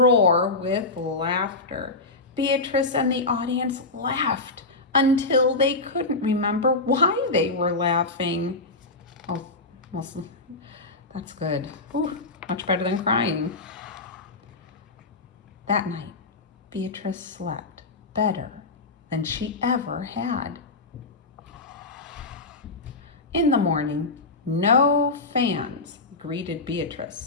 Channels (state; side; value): quieter; right; 3.4 dB